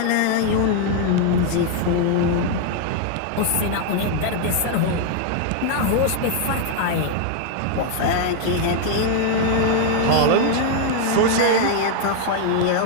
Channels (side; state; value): both; different; correlation 0.00